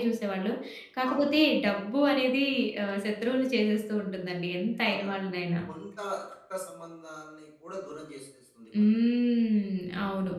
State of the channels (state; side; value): identical; both; correlation 1.00